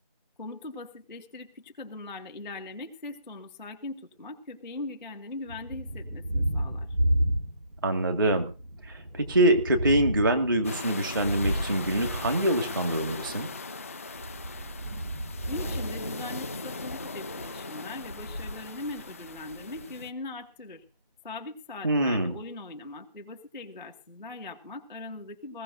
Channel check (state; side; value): inverted; both; correlation -0.59